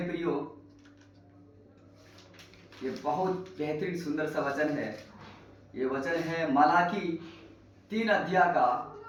प्रियो, ये बहुत बेहतरीन सुंदर सा वचन है। ये वचन है मलाकी 3 अध्याय का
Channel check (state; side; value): identical; both; correlation 1.00